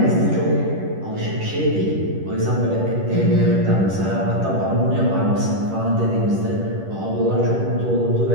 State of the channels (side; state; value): left; late; 10 ms